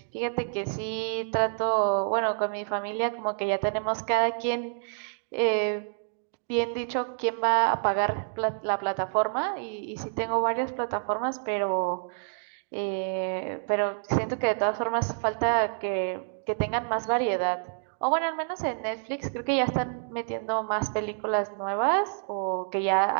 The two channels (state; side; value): silent; left; digital silence